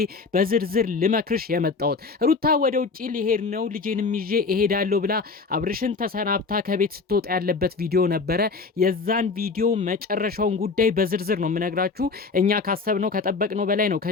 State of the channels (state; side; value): quieter; right; 4.5 dB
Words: በዝርዝር ልመክርሽ የመጣሁት። ሩታ ወደ ውጪ ሊሄድ ነው ልጄንም ይዤ እሄዳለሁ ብላ አብርሽን ተሰናብታ ከቤት ስትወጣ ያለበት ቪዲዮ ነበረ። የዛን ቪዲዮ መጨረሻውን ጉዳይ በዝርዝር ነው የምነግራችሁ። እኛ ካሰብነው ከጠበቅነው በላይ ነው